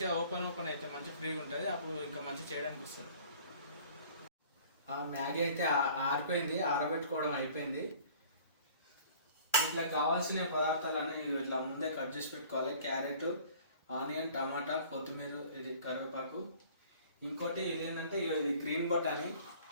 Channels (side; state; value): both; inverted; correlation -0.50